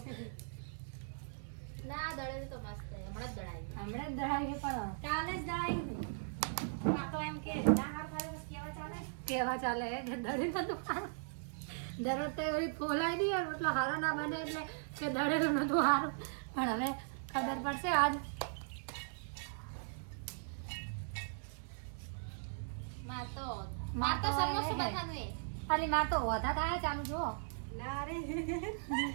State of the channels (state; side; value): silent; left; digital silence